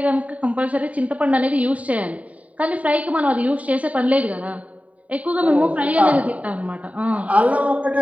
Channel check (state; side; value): late; left; 0.068 ms